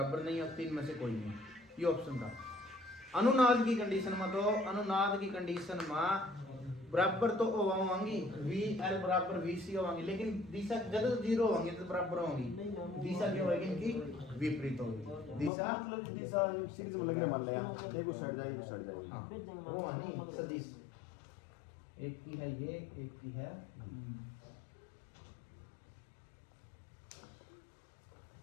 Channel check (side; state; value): right; drops out; at 15.5 s